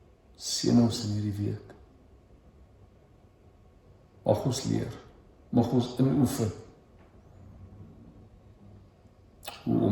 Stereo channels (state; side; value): identical; both; correlation 1.00